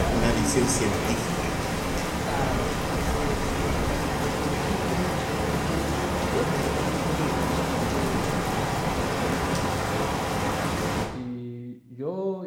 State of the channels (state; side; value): identical; both; correlation 1.00